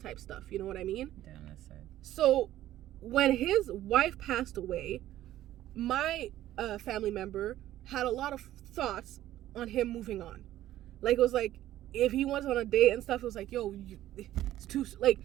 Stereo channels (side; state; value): left; quieter; 13.7 dB